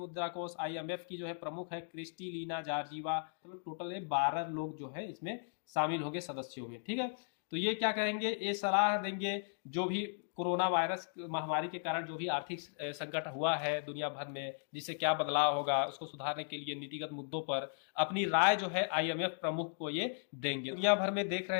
कोष IMF की जो है प्रमुख है क्रिस्टलिना जॉर्जिवा। मतलब टोटल 12 लोग जो है इसमें शामिल होंगे सदस्यों में, ठीक है। तो ये क्या कहेंगे, ये सलाह देंगे जो भी कोरोना वायरस महामारी के कारण जो भी आर्थिक संकट हुआ है दुनिया भर में, जिससे क्या बदलाव होगा उसको सुधारने के लिए नीतिगत मुद्दों पर अपनी राय जो है IMF प्रमुख को ये देंगे। दुनिया भर में देख रहे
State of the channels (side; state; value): right; silent; digital silence